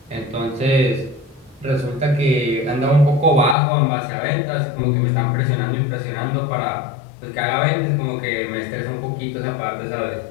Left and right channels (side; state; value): right; drops out; at 3.6 s